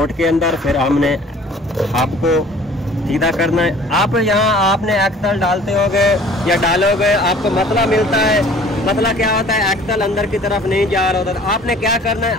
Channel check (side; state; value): both; normal; correlation 0.51